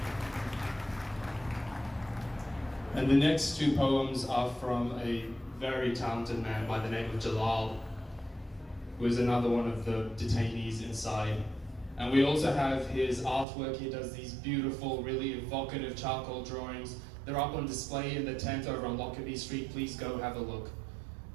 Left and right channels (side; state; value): left; drops out; at 13.5 s